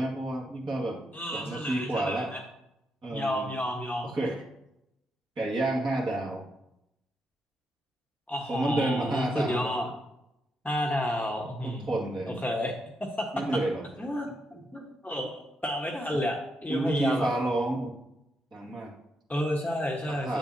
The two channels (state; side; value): normal; both; correlation 0.81